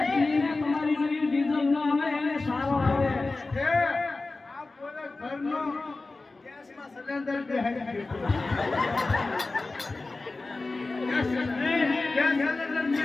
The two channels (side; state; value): right; quieter; 3.4 dB